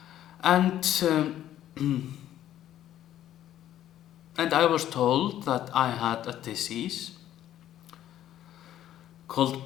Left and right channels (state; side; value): quieter; right; 12.0 dB